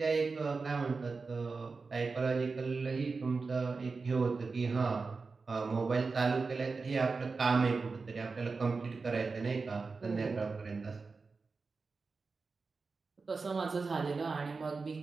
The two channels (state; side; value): quieter; left; 4.3 dB